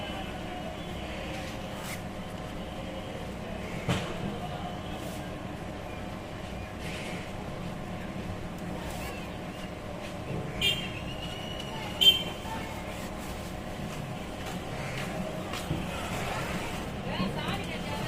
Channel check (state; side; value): identical; both; correlation 1.00